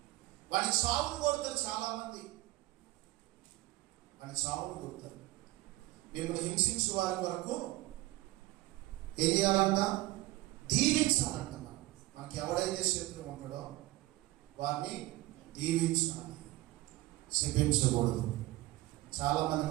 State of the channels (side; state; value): left; quieter; 18.8 dB